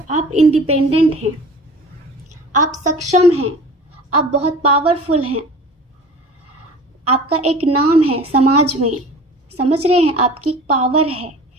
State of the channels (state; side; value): normal; both; correlation 0.41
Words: आप इंडिपेंडेंट हैं, आप सक्षम हैं, आप बहुत पावरफुल हैं, आपका एक नाम है समाज में, समझ रहे हैं, आपकी पावर है।